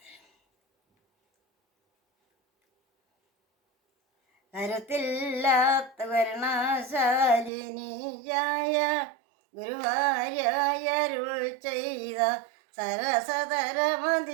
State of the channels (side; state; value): left; drops out; at 7.5 s